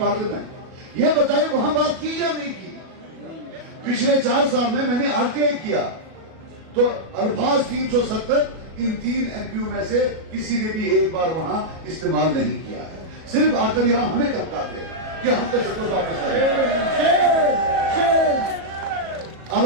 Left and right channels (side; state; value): left; late; 37 ms